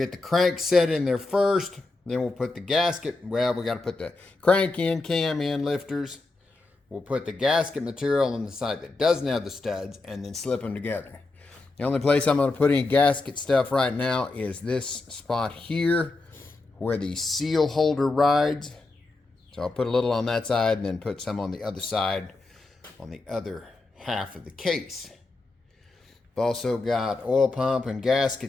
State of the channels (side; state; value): right; quieter; 3.4 dB